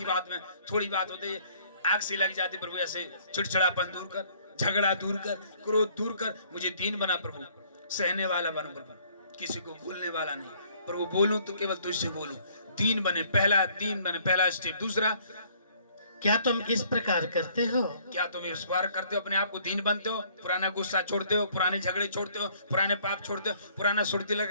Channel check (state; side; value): inverted; both; correlation -0.60